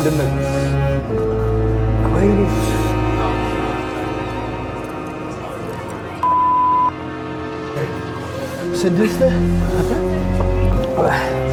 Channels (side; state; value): both; identical; correlation 1.00